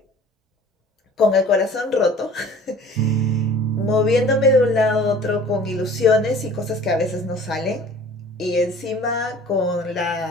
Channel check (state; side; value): normal; both; correlation 0.47